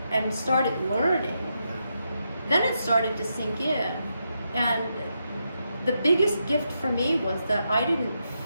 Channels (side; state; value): both; inverted; correlation -0.83